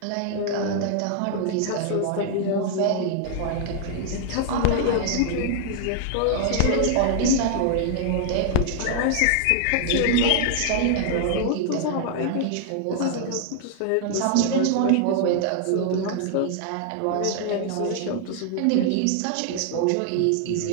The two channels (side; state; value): both; different; correlation 0.00